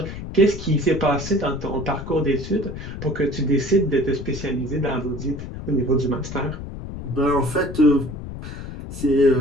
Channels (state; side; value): noise; left; rumble, 9 dB below the sound